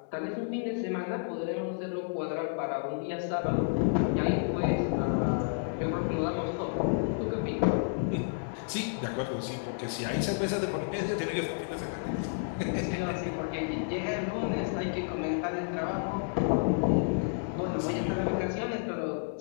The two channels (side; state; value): right; silent; digital silence